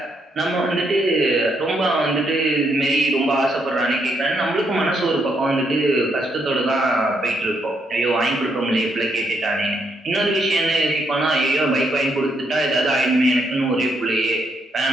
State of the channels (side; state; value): both; normal; correlation 0.76